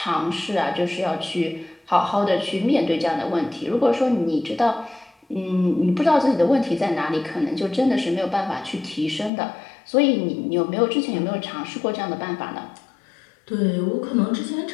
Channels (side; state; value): right; drops out; at 9.3 s